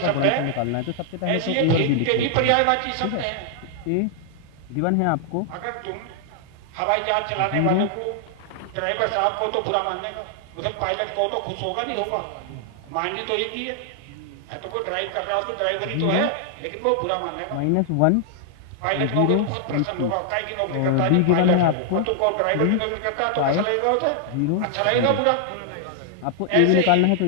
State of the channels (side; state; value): both; different; correlation 0.00